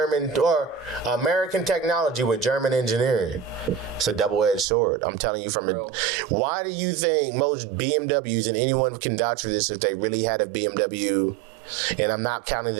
or American technology with German engineering. It's a double-edged sword. I'm telling you from Real. Why do you think most BMWs, and anyone can vouch for this if they really had a BMW, and I'm not counting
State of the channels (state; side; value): drops out; left; at 4.7 s